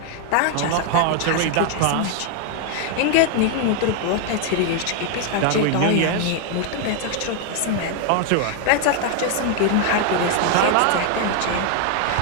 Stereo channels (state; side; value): different; both; correlation 0.00